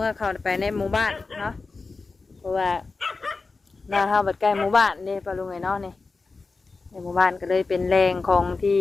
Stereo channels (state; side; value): quieter; right; 4.0 dB